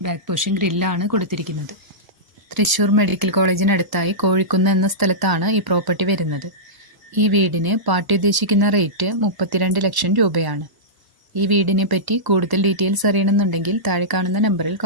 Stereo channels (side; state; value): left; late; 1.0 ms